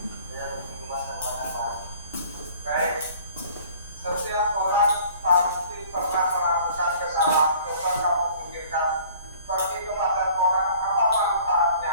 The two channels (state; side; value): inverted; both; correlation -0.51